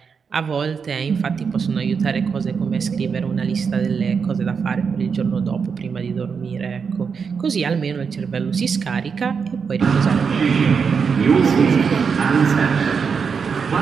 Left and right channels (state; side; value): quieter; left; 5.9 dB